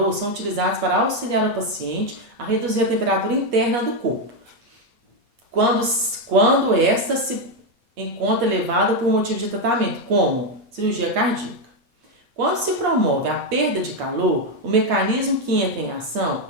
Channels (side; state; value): left; late; 8.5 ms